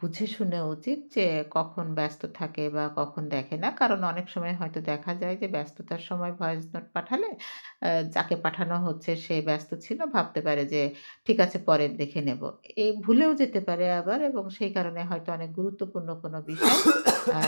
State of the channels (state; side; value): inverted; both; correlation -1.00